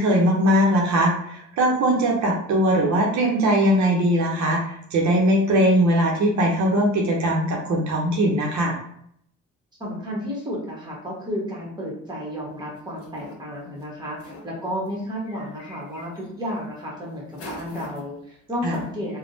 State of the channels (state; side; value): normal; both; correlation 0.36